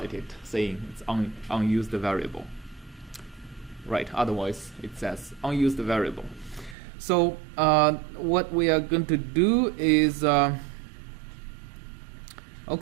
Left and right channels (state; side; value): drops out; left; at 6.8 s